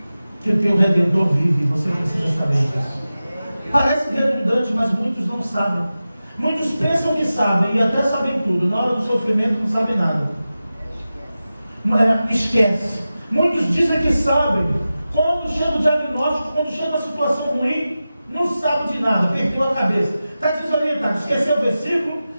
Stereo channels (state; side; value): inverted; both; correlation -0.94